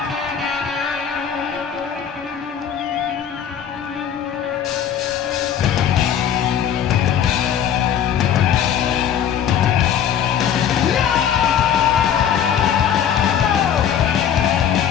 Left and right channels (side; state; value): right; quieter; 8.9 dB